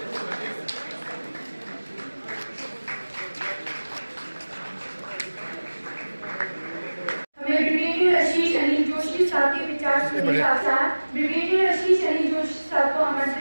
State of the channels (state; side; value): inverted; both; correlation -1.00